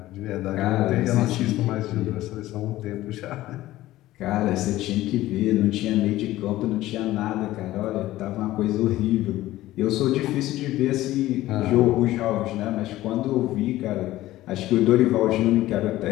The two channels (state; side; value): quieter; right; 15.8 dB